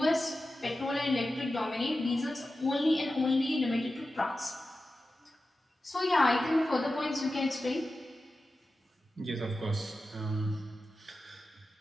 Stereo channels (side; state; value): both; normal; correlation 0.93